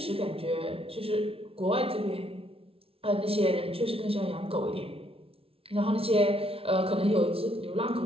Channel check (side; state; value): left; late; 0.27 ms